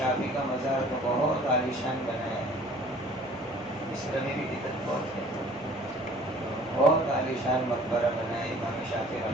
کا مزار تو بہت عالیشان بنایا ہے، مصر میں بھی بدعت بہت ہے، بہت عالیشان مقبرہ بنا ہے امام شافعی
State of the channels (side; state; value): right; noise; hum, 24 dB below the sound